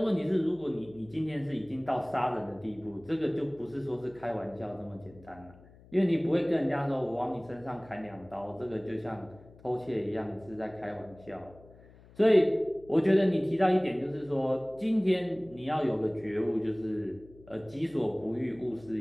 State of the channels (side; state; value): left; noise; hum, 23 dB below the sound